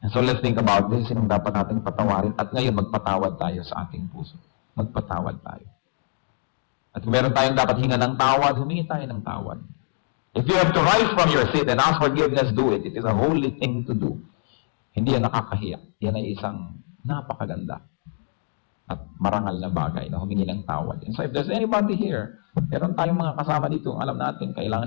And so let's think about this, sinong dapat nating patawarin, at ngayon magpatawad tayo sa ating puso. Magpatawad tayo. At kung meron tayong dapat hinga ng tawad, humingi tayo ng tawad. If you have to rise from your seat and ask forgiveness, do it. It is a holy thing to do. Hindi yan nakakahiya. Yan ay isang napakaganda at marangal na bagay na humingi ng tawad. And so if there's anybody here, meron tayong mga kasama dito, alam natin,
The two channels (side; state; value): right; silent; 58 dB below the other